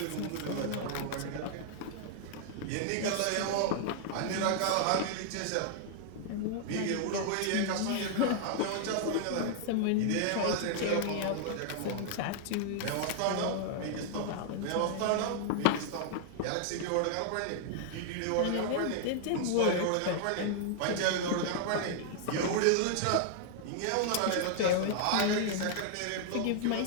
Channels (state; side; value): different; both; correlation 0.00